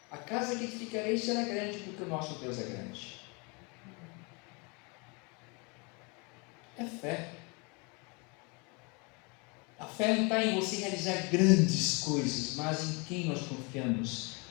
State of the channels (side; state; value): right; quieter; 30.6 dB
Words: A casa que edificarei será grande, porque o nosso Deus é grande. É fé. A fé não está em você realizar grandes coisas, mas em quem nós confiamos,